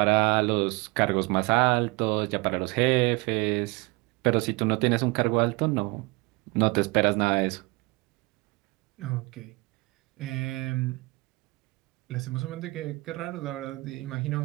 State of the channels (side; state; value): left; quieter; 25.2 dB